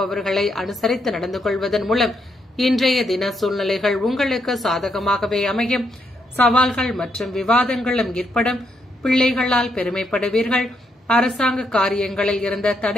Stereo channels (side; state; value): both; normal; correlation 0.78